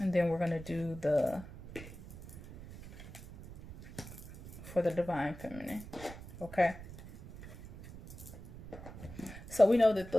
And then we're going to do for the divine feminine. Okay. So we know that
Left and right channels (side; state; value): right; noise; rumble, 14 dB below the sound